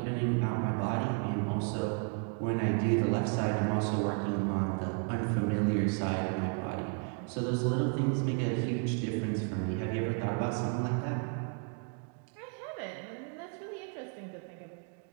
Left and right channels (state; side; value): quieter; left; 39.8 dB